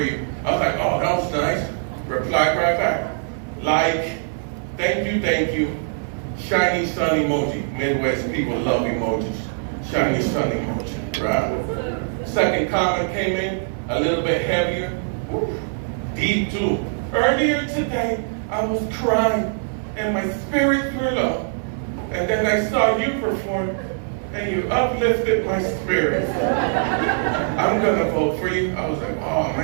you. I was like, oh, that was nice. Replied right back. Like, thank you. Shiny sun emoji. Midwest people love emojis. Shiny sun emoji, right? Second comment came in, a little bit heavier. Woo, deep too. Earlier today, I was crying and my spirit grew low. And then I saw you perform and you uplifted my spirit. I'm gonna vote for you. I was like, oh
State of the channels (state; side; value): silent; left; 61 dB below the other